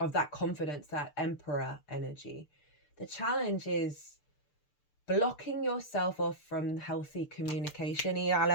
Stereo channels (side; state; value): right; late; 6.7 ms